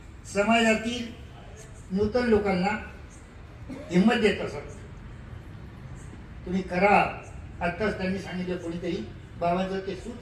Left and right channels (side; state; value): both; identical; correlation 1.00